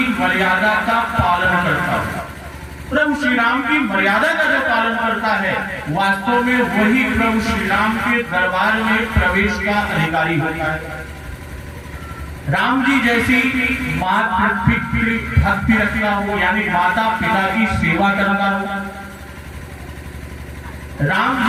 मर्यादा का पालन करता है। प्रभु श्री राम की मर्यादा का जो पालन करता है, वास्तव में वही प्रभु श्री राम के दरबार में प्रवेश का अधिकारी होता है। राम जी जैसी मातृ भक्ति रखना हो, यानी माता पिता की सेवा करना हो, राम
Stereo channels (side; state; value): both; identical; correlation 1.00